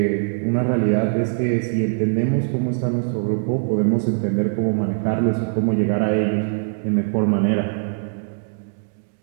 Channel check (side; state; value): left; silent; digital silence